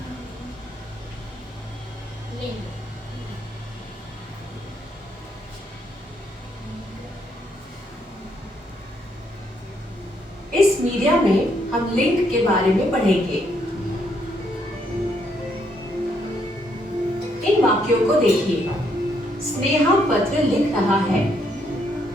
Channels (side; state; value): both; normal; correlation 0.73